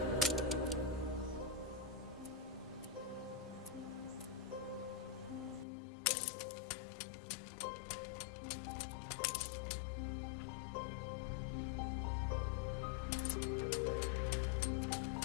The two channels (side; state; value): right; drops out; at 5.7 s